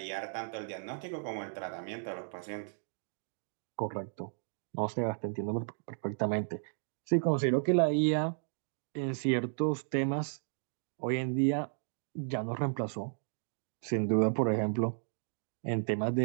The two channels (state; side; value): silent; left; digital silence